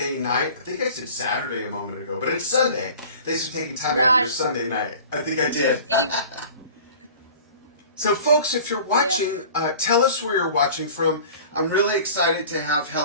night. I think I said Saturday a moment ago, but it's Sunday. Thanks for taking time out of your Sunday night. I think I did. So, folks, if you're watching, tell us where you're watching from. I'm really excited to have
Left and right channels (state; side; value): inverted; both; correlation -0.42